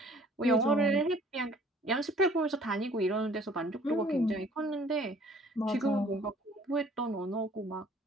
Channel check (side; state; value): both; normal; correlation 0.55